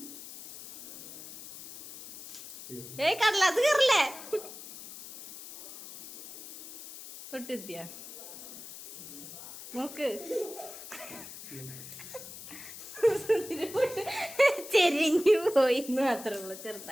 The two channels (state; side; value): noise; left; hiss, 13 dB below the sound